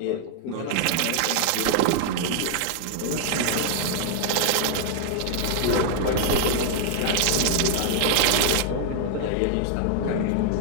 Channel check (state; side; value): different; both; correlation 0.00